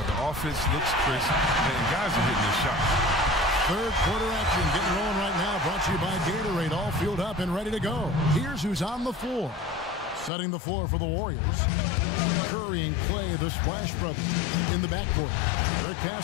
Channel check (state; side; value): drops out; right; at 10.3 s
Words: the offense looks crisp, and guys are hitting their shots. Third quarter action getting rolling right now, brought to you by Gatorade, all fueled up and ready to go. Here's who's on the floor. Setting the floor for the Warriors. Curry and Clay, the Splash Brothers, in the backcourt. Rick